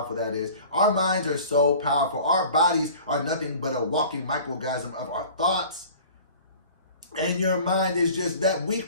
that is. Our minds are so powerful. Our bodies are nothing but a walking microorganism of our thoughts. And your mind is just that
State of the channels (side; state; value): both; inverted; correlation -0.44